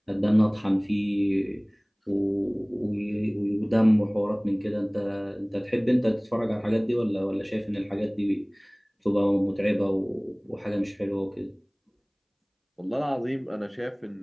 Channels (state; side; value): identical; both; correlation 1.00